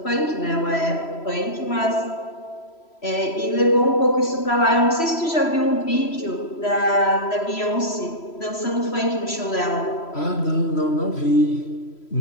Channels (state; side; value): late; right; 3.0 ms